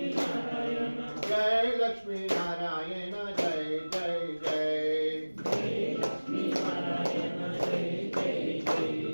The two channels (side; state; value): both; inverted; correlation -1.00